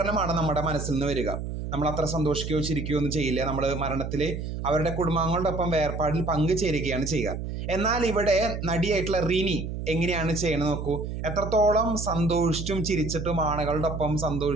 നമ്മുടെ മനസ്സിൽ നിന്ന് വരിക. നമ്മൾ അത്ര സന്തോഷിക്കുകയോ ചിരിക്കുകയോ ഒന്നും ചെയ്യില്ല. നമ്മൾ മരണത്തിൽ അവരുടെ കുടുംബാംഗങ്ങളോടൊപ്പം വേർപാടിൽ പങ്കുചേരുകയാണ് ചെയ്യുക. എന്നാൽ ഇവിടെ നടിയായിട്ടുള്ള റിനി എങ്ങനെയാണ് ചെയ്യണത് നോക്കൂ. എത്രത്തോളം സന്തോഷിച്ചും ചിരിച്ചിട്ടും ആളുകളുടെ ഒപ്പം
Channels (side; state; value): right; noise; hum, 5 dB below the sound